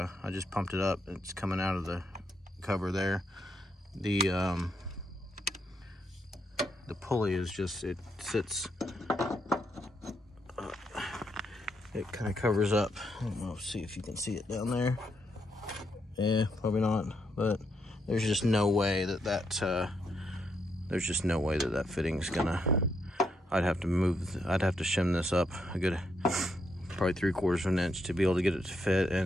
just pumped it up. It's coming out of the cover there. The pulley is just, it sits, it kind of covers up. I don't know, see if you can see it down there. Yeah, probably not, but there's just no way that there's just no way that fitting's gonna, I'd have to shim this up a good, probably 3/4 of an inch to be able to get it to fit.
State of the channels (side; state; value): both; normal; correlation 0.78